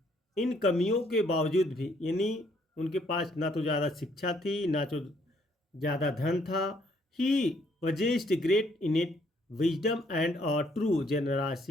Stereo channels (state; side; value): normal; both; correlation 0.67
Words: इन कमियों के बावजूद भी, यानी उनके पास ना तो ज़्यादा शिक्षा थी, ना तो ज़्यादा धन था। ही possessed great innate wisdom and a true